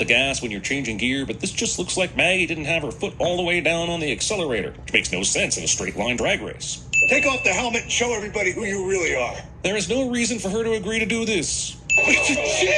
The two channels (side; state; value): both; identical; correlation 1.00